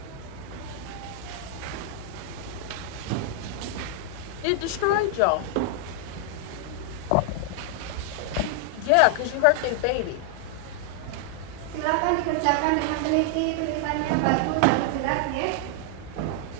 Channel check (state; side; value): different; both; correlation 0.00